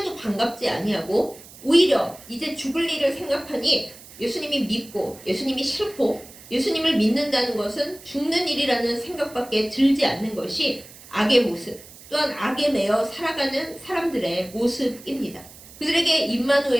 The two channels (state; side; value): noise; right; hiss, 19 dB below the sound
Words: 반갑지 아니하고 오히려 이제 죽을 일을 생각하니 예수님이 믿고 예수님이 싫고 예수님을 믿는다는 것은 죽는 일이라는 생각밖에 들지 않는 것이 악의 모습, 또한 악에 매여 살아가는 사람들의 모습입니다. 그들에게